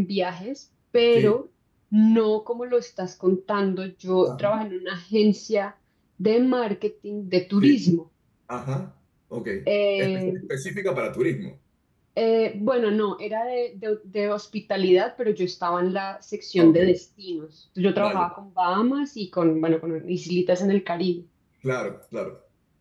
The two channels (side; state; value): both; identical; correlation 1.00